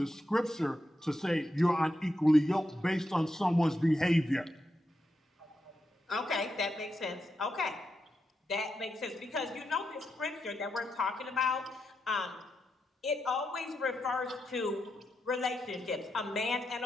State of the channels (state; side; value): normal; both; correlation 0.85